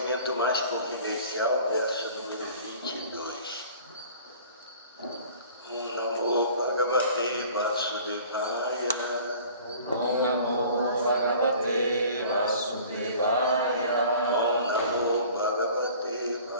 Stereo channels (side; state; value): both; inverted; correlation -0.47